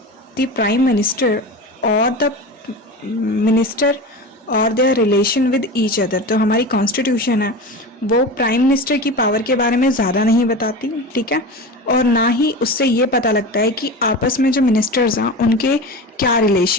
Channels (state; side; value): normal; both; correlation 0.29